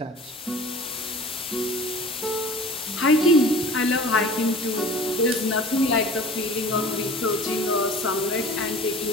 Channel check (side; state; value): both; normal; correlation 0.43